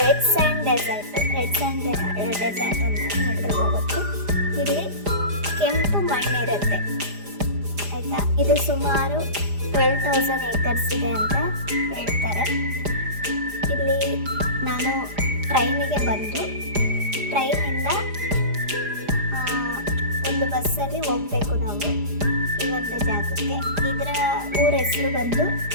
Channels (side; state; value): left; late; 4.9 ms